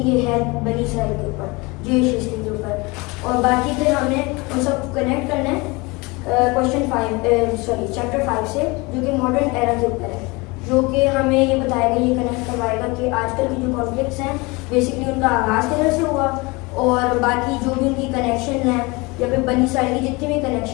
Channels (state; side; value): quieter; right; 25.5 dB